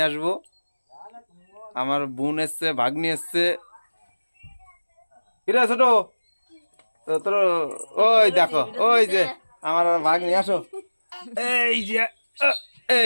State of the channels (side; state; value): both; inverted; correlation -1.00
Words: আসবো। আমার বোন এসছে, ভাগ্নি এসছে। কিরে ছোট, তোর ওই দেখো, ওই যে আমার ভাগ্নি, আসো। এই যে